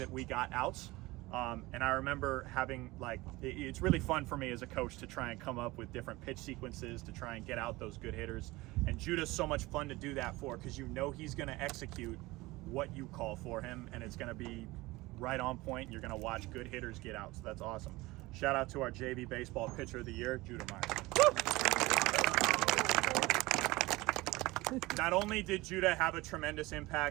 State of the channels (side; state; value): left; quieter; 20.6 dB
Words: we got outs. And I remember having, like, it's really fun for me as a coach to try and come up with different pitch sequences to try and get out those good hitters. And Judah's so much fun to do that for, because you know he's going to execute what you call for him, and it's going to be right on point, and you're going to watch good hitters get out. So that's awesome. Shout out to our JV Baseball Pitcher of the Year, Judah Myers. Not only did Judah have a tremendous